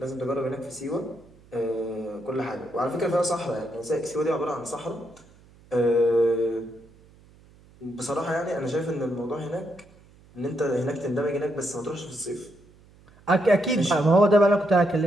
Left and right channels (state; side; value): noise; right; hum, 27 dB below the sound